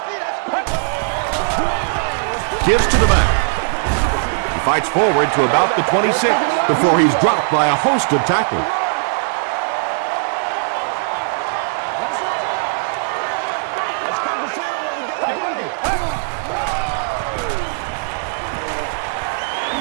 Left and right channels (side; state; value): left; silent; digital silence